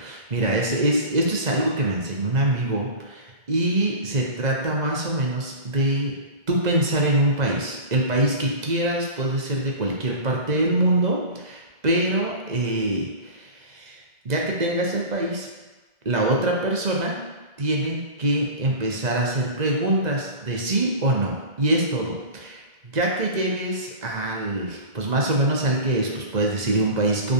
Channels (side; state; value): left; late; 2.0 ms